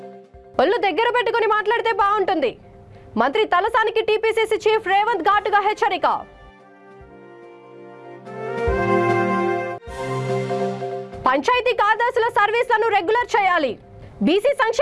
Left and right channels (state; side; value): identical; both; correlation 1.00